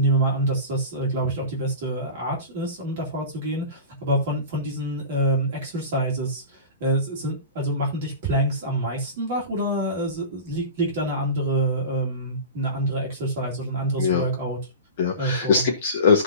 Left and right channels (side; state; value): both; inverted; correlation -0.32